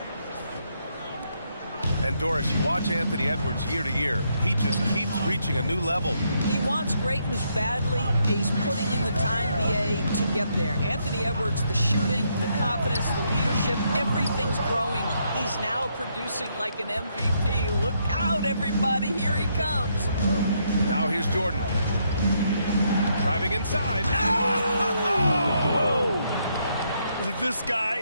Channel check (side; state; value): both; inverted; correlation -0.75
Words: And Doris, you watch Anthony Edwards year to year. He just keeps reaching a new level. He wants greatness badly. He's putting in the time, BA, to get there. Anthony Edwards, the shooting, the confidence, the leadership, everything's growing. He's now producing like an MVP. Look out, everybody. Here he comes. Now here's Jordan. Driving inside. Oh! This guy